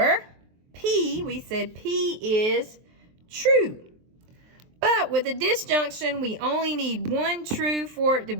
P, we said P is true. But with a disjunction, we only need one true for it to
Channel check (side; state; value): left; late; 23 ms